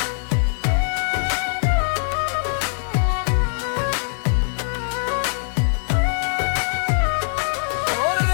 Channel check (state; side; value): silent; right; digital silence